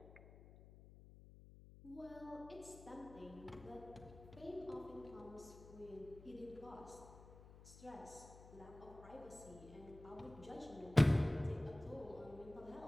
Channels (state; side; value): noise; left; hum, 17 dB below the sound